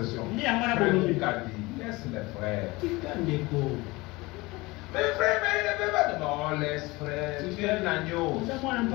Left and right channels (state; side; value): quieter; right; 22.4 dB